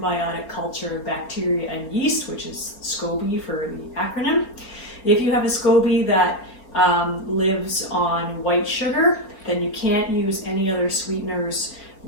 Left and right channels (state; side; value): late; right; 4.4 ms